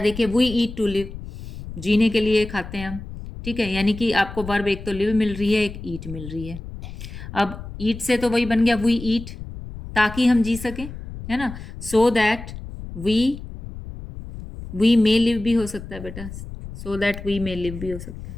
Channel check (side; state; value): left; noise; rumble, 11 dB below the sound